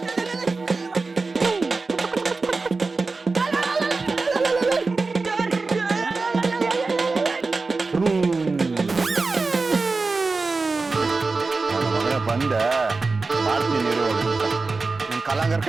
ನನ್ನ ಮಗನ ಬಂದೆ ಮಾಡ್ತೀನಿ ಇರು ಹೋಗ್ಬಿಟ್ಟ. ನಿನ್ ಕಲಾಂಗರ್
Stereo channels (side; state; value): left; quieter; 3.9 dB